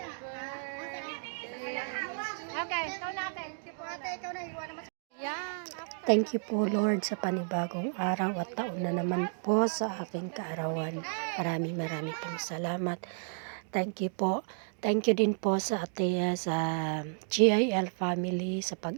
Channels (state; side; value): silent; left; digital silence